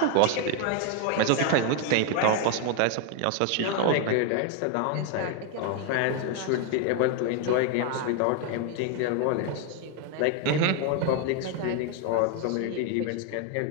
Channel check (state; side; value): different; both; correlation 0.01